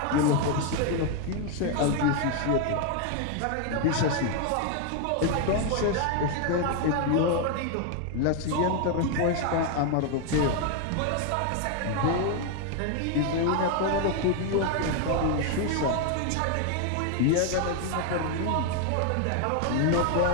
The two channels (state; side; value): different; both; correlation 0.01